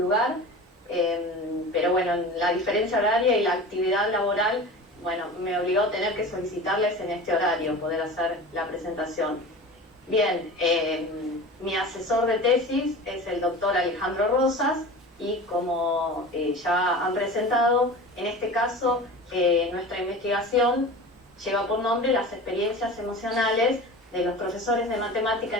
Pero bueno, la diferencia horaria y la actividad laboral, bueno, me obligó a tener que solicitarles en este horario poder hacer la presentación. Bien, mi asesor de tesis es el doctor Alejandro Rosas y como ya han presentado, en este caso nuestra investigación lleva por nombre las experiencias emocionales de los profesores de matemática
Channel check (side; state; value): both; normal; correlation 0.34